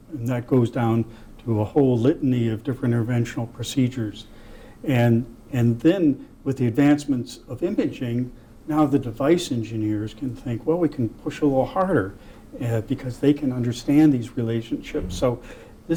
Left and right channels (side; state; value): both; identical; correlation 1.00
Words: that goes down to a whole litany of different interventional procedures. And then with the advancements of imaging, now the device engineers can think, well, we can push a little harder because they can understand these relationships. So